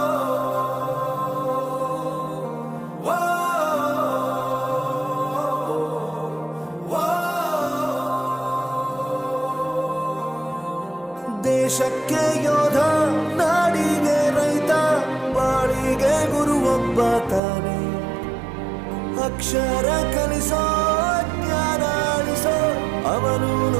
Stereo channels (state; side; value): drops out; left; at 17.4 s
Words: ದೇಶಕ್ಕೆ ಯೋಧ, ನಾಡಿಗೆ ರೈತ, ಬಾಳಿಗೆ ಗುರು ಒಬ್ಬ ತಾನೆ. ಅಕ್ಷರ ಕಲಿಸೋ, ಜ್ಞಾನ ಅಳಿಸೋ,